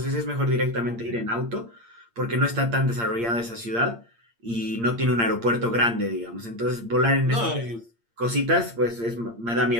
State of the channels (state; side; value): late; left; 8.7 ms